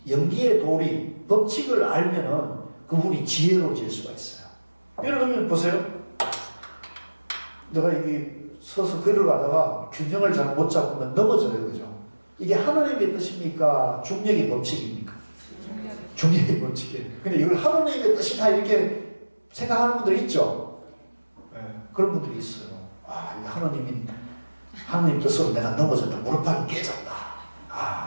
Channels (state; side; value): inverted; both; correlation -1.00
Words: 연기의 도리, 법칙을 알면은 그분이 지혜로워질 수가 있어요. 예를 들면 보세요. 내가 이게 서서 글을 가다가 균형을 잘 못 잡으면 넘어져요, 그죠? 이게 하나님의 뜻입니까? 중력의 법칙입니까? 중력의 법칙이에요. 근데 이걸 하나님의 뜻이다 이렇게 생각하는 분들이 있죠? 네, 그런 분들이 있어요. 아, 이게 하나님 뜻으로 내가 넘어졌다. 무릎팍이 깨졌다.